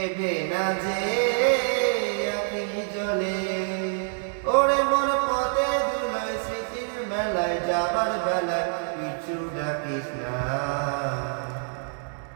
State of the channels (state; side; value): silent; left; 58 dB below the other